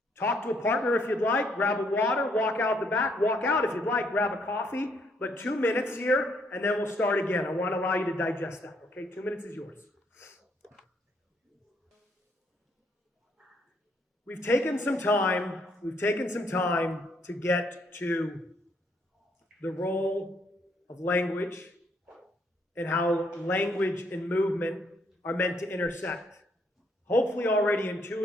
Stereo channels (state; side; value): normal; both; correlation 0.70